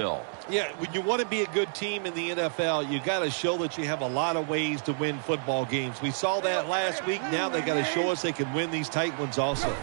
Yeah, when you want to be a good team in the NFL, you got to show that you have a lot of ways to win football games. We saw that last week. Now they got to show us they can win these tight ones also.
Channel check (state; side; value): silent; left; digital silence